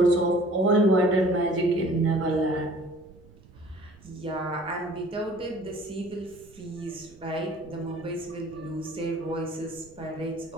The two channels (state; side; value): noise; right; rumble, 24 dB below the sound